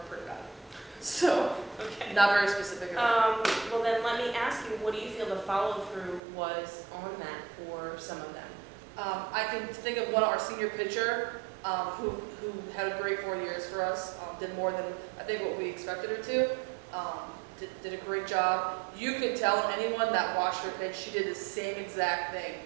pretty bad. So, Okay. not very specific. Well then let me ask you, what do you feel the follow-through was on that for some of them? I can think of one, our senior pitcher, who had a great 4 years for us, did more than I think what we expected her to. Did a great job. You could tell anyone that watched her pitch, she did the same exact thing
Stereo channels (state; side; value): drops out; left; at 6.2 s